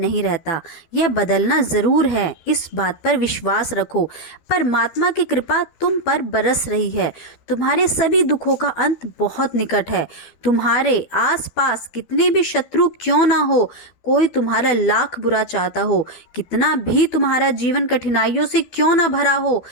रहता, यह बदलना जरूर है, इस बात पर विश्वास रखो। परमात्मा की कृपा तुम पर बरस रही है। तुम्हारे सभी दुखों का अंत बहुत निकट है। तुम्हारे आसपास कितने भी शत्रु क्यों ना हो, कोई तुम्हारा लाख बुरा चाहता हो, कितना भी तुम्हारा जीवन कठिनाइयों से क्यों ना भरा हो,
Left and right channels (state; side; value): late; right; 12 ms